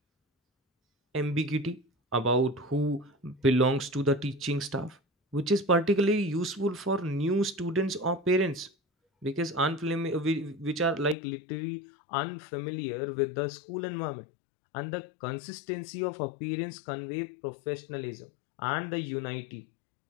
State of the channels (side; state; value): right; drops out; at 11.2 s